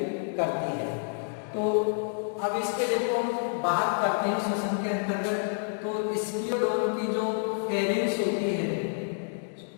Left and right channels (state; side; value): silent; right; digital silence